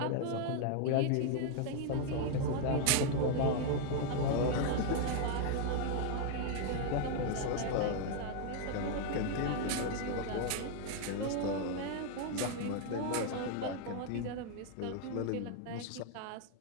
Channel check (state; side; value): different; both; correlation 0.00